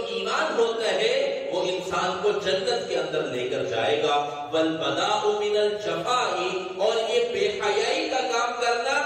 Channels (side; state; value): both; identical; correlation 1.00